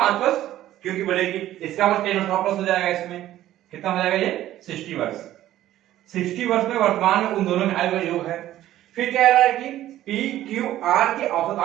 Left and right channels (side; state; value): left; quieter; 13.5 dB